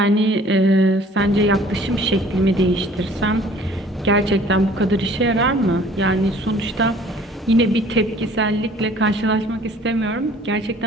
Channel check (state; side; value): normal; both; correlation 0.53